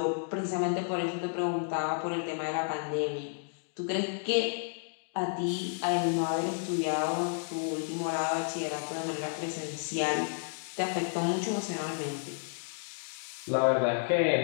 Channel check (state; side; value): silent; right; digital silence